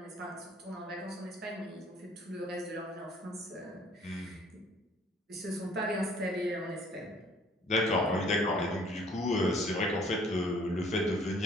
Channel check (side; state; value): both; normal; correlation 0.57